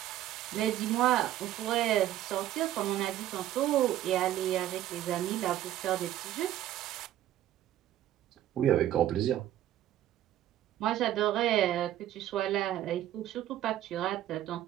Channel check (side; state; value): left; quieter; 12.8 dB